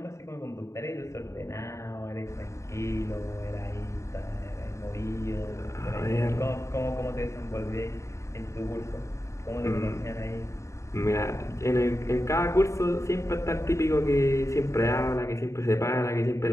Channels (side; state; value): right; late; 0.14 ms